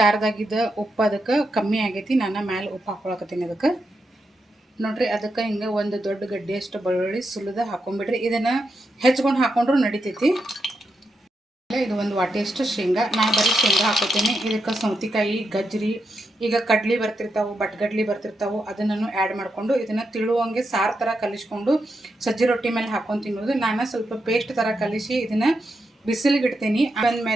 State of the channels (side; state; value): both; normal; correlation 0.84